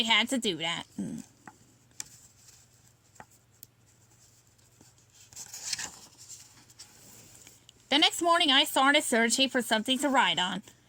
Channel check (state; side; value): identical; both; correlation 1.00